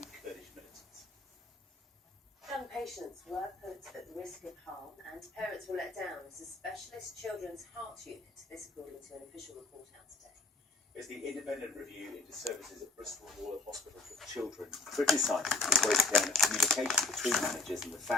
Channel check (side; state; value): right; quieter; 3.4 dB